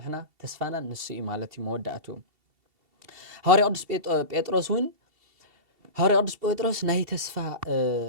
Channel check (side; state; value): left; late; 2.7 ms